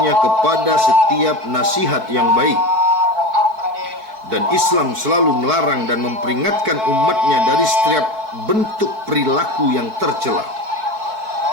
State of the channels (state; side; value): late; left; 4.6 ms